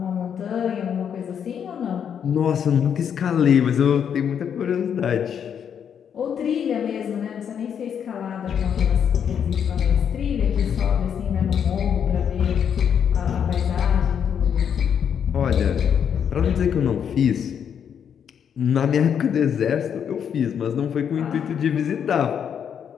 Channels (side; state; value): right; quieter; 8.1 dB